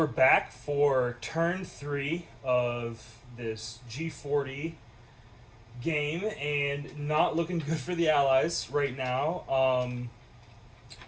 back for turn 3 of this G40 game, and not looking good for the Allies right now.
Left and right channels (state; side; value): identical; both; correlation 1.00